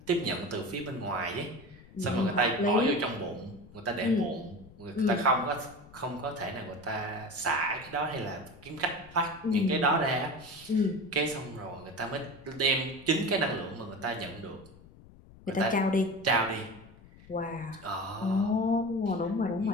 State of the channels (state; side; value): noise; left; rumble, 22 dB below the sound